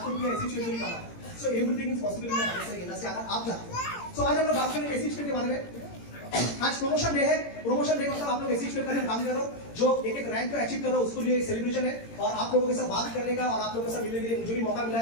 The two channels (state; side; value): late; right; 17 ms